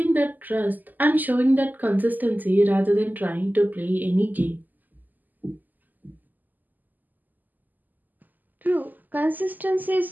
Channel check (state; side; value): late; left; 0.085 ms